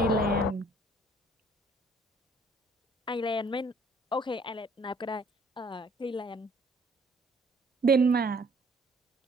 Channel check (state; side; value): normal; both; correlation 0.59